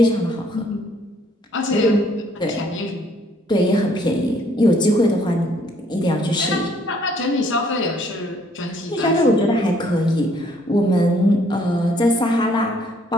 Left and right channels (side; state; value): both; normal; correlation 0.64